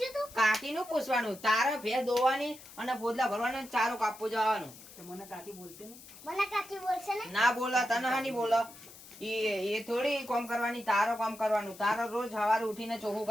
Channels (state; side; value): noise; left; hiss, 18 dB below the sound